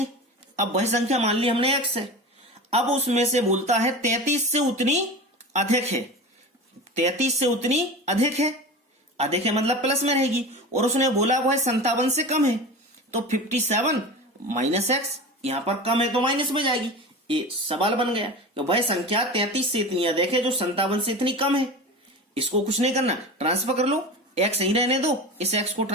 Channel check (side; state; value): both; normal; correlation 0.30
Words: अब वह संख्या मान ली हमने x है। अब उसमें से बोलता है 33 से उतनी अधिक है। 33 से उतनी अधिक है, अधिक है मतलब प्लस में रहेगी। और उसने बोला वह 57 से कम है, तो 57 माइनस एक्स, यहां पर कम है तो माइनस में जाएगी। ये सवाल बन गया कि वह संख्या 33 से इतनी अधिक है जो 57 से इतनी कम है। इसको कुछ नहीं करना, ट्रांसफर कर लो, एक्स यहीं रहने दो। इस एक्स को